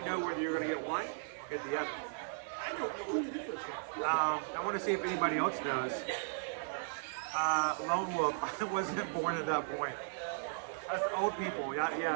know whether you were going to get one or get the other. I don't know what the difference is. I want to see if anybody else knows. Lone Wolf, I wasn't born at that point. That's old people.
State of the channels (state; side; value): silent; left; digital silence